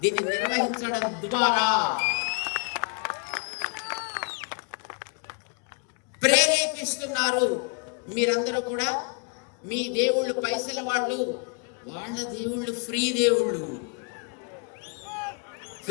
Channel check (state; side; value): quieter; right; 33.5 dB